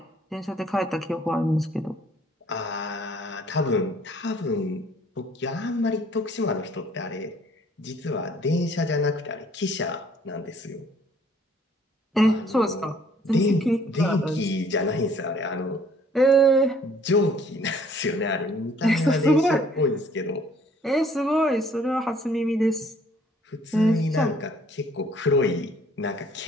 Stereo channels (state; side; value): normal; both; correlation 0.59